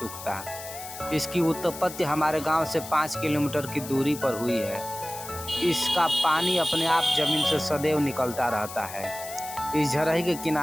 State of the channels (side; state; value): left; noise; hiss, 12 dB below the sound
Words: इसकी उत्पत्ति हमारे गांव से 5 किलोमीटर की दूरी पर हुई है। इसका पानी अपने आप जमीन से सदैव निकलता रहता है। इस झरही के